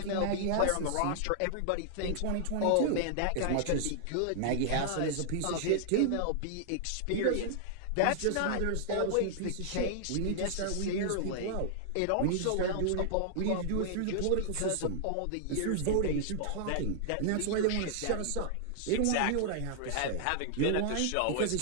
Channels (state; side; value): different; both; correlation 0.00